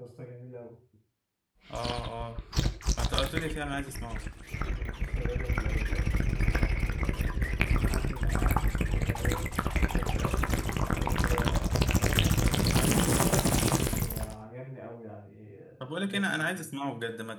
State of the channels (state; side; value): identical; both; correlation 1.00